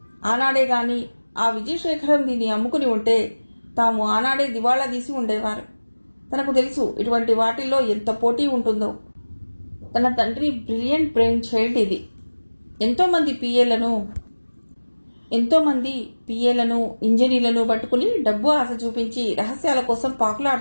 ఆనాడే గాని ఆ విజయశేఖరం దీన్ని అమ్ముకుని ఉంటే తాము ఆనాడే దివాళా తీసి ఉండేవారు. తనకు తెలుసు ఇటువంటి వాటిల్లో ఎంత పోటీ ఉంటుందో. తన తండ్రి బ్రిలియంట్ బ్రెయిన్ చైల్డ్ ఇది. ఎంతోమంది పిఏలను ఇంజనీర్లను పట్టుకుని డబ్బు ఆశ చూపించి రహస్యాల కోసం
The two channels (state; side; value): inverted; both; correlation -1.00